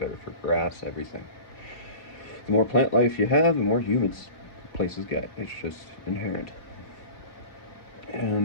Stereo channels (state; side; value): late; right; 4.2 ms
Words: for grass, everything. The more plant life you have, the more humid places get. It's just inherent.